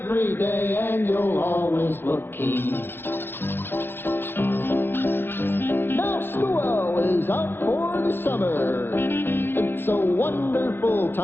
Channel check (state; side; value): late; right; 0.10 ms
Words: day and you'll always look keen. Now school is out for the summer. It's a wonderful